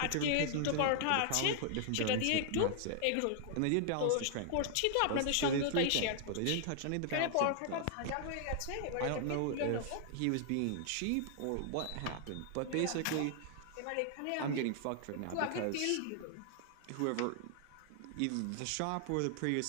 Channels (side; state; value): both; different; correlation 0.00